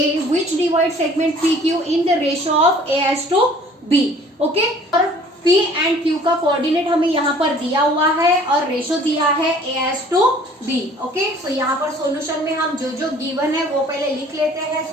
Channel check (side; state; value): both; normal; correlation 0.52